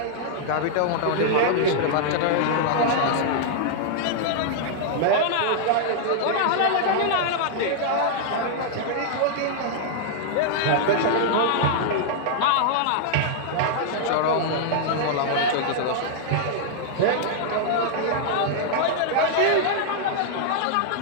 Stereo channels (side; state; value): both; different; correlation -0.01